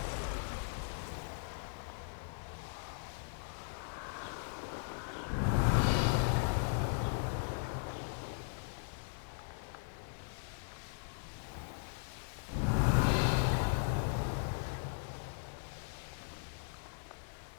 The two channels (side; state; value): right; silent; 52 dB below the other